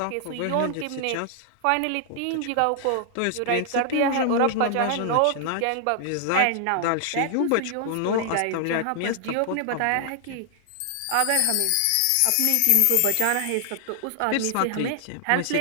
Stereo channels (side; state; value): both; different; correlation 0.00